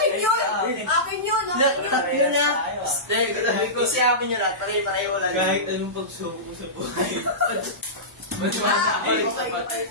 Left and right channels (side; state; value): both; normal; correlation -0.19